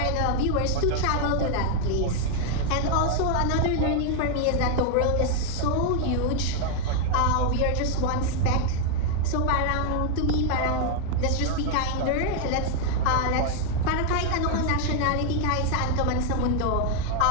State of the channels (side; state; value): both; different; correlation 0.00